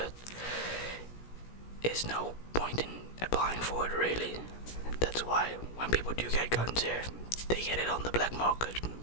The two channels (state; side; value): late; right; 17 ms